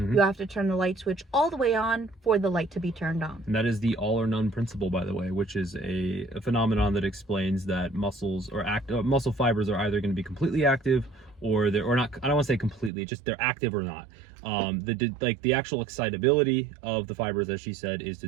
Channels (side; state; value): left; drops out; at 12.9 s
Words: have to turn the light switch all the way on for the light to be turned on. And that is the all or none principle, by the way, which is a phenomenon that explains that muscles or muscle fibers are either going to be completely active or not. I don't want to say completely, just they're active or not. The actual excitability of the fibers, as she said, is